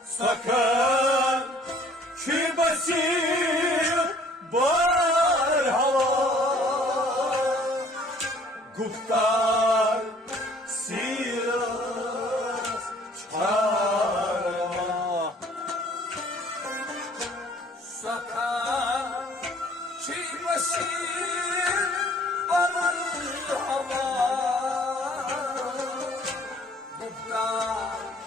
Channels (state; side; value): normal; both; correlation 0.56